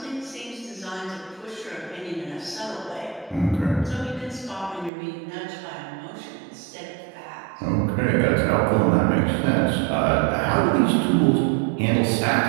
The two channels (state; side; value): drops out; left; at 4.9 s